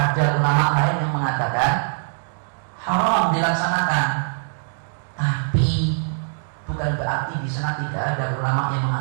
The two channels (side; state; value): left; silent; 64 dB below the other